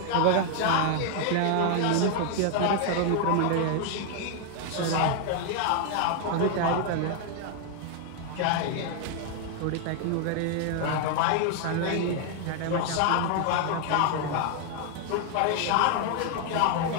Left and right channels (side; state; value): both; different; correlation 0.00